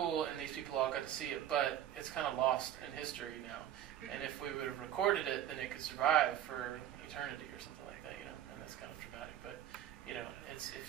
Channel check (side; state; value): left; quieter; 11.0 dB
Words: and these people all got to see it, but it's kind of lost in history now. And if we would have recorded it, then it could survive for eternity or something like that, and that's kind of dramatic. But, it's